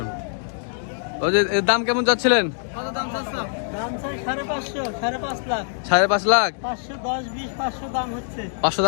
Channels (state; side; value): silent; right; digital silence